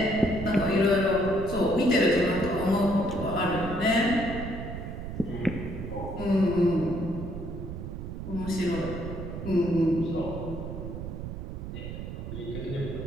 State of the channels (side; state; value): right; noise; rumble, 7 dB below the sound